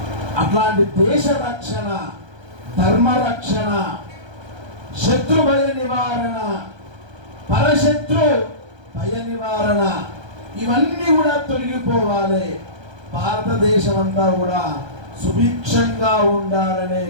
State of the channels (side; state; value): left; late; 1.3 ms